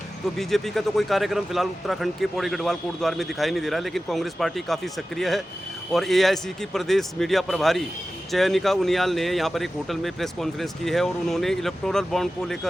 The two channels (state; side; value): normal; both; correlation 0.94